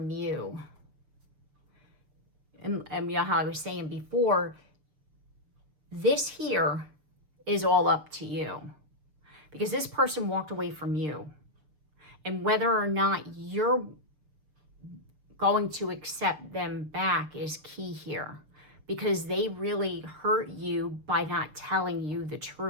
you. And you know how I was saying before, this here is all up to you. Because this person walked away from you. And whether or not you're going to accept them back is key here. Because they really hurt you by not telling you the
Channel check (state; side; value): late; left; 6.7 ms